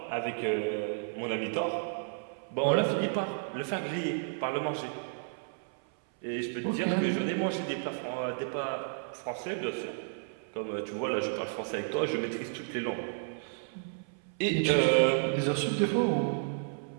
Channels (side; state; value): left; silent; 56 dB below the other